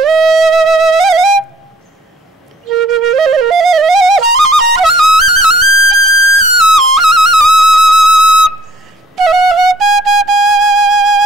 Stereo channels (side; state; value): both; normal; correlation 0.61